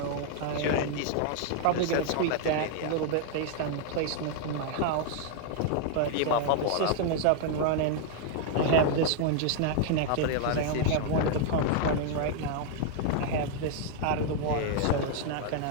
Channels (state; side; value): different; both; correlation 0.00